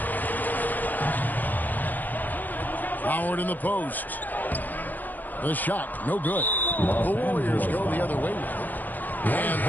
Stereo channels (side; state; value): right; late; 0.085 ms